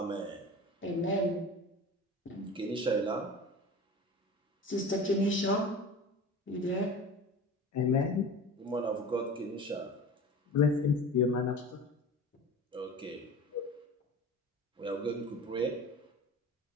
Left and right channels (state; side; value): normal; both; correlation 0.36